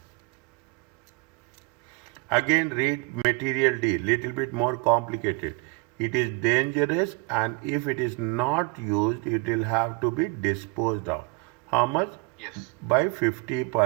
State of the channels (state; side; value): quieter; left; 24.9 dB